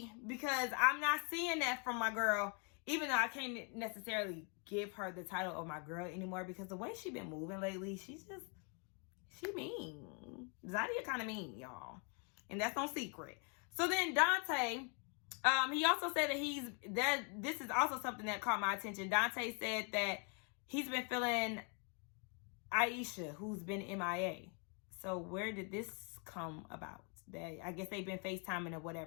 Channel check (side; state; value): right; quieter; 37.5 dB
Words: because I'm not seeing that from my girl. Even though I can't necessarily give her the title of my girl anymore because the way she been moving lately, she mean. Zadia kind of mean, y'all. And that's no secret. So then Dante, he also said that this is also something that caught my attention. Dante said that he's been feeling Aisha, who's been MIA. So where did this come about? That I guess they've been FaceTiming or